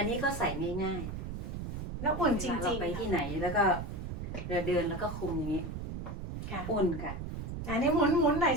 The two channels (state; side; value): noise; right; rumble, 6 dB below the sound